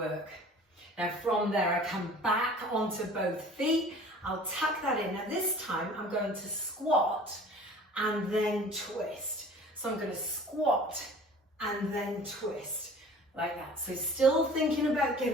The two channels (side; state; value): both; normal; correlation 0.46